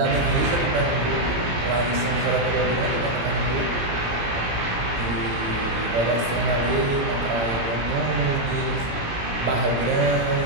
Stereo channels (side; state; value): left; late; 17 ms